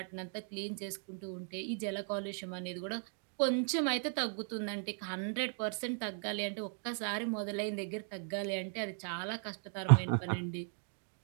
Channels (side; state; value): left; silent; 53 dB below the other